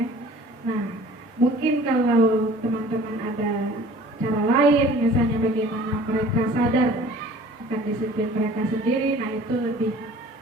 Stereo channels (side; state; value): both; normal; correlation 0.49